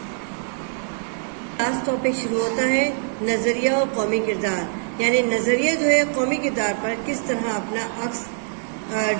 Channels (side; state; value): left; silent; digital silence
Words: لاسٹ ٹاپک شروع ہوتا ہے نظریہ اور قومی کردار. یعنی نظریہ جو ہے قومی کردار پر کس طرح اپنا عکس